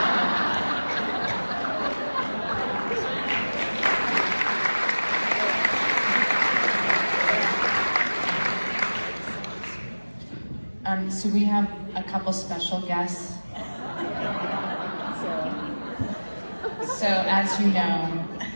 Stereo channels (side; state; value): both; inverted; correlation -1.00